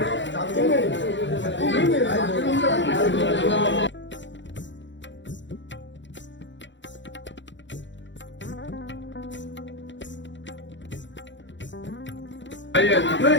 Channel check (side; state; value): right; late; 0.54 ms